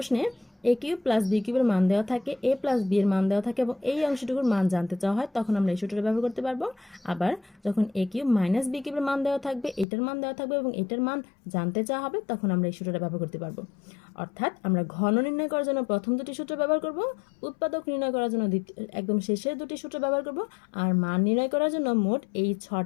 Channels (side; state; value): right; drops out; at 9.9 s